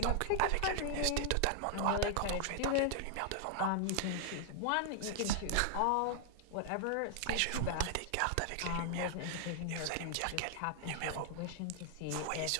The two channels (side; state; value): both; different; correlation 0.00